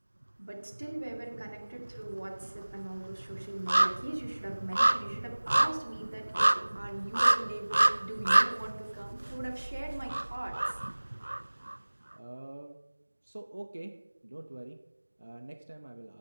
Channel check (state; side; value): inverted; both; correlation -1.00